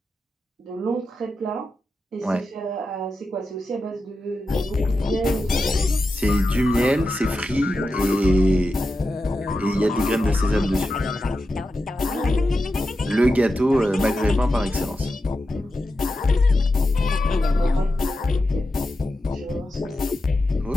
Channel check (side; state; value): both; normal; correlation 0.90